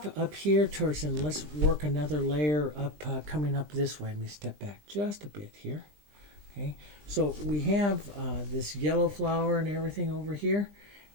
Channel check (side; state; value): left; late; 20 ms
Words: and let's work another layer up, coming up this way. Let me step back just a bit here. Okay, so we have this yellow flower and everything over here,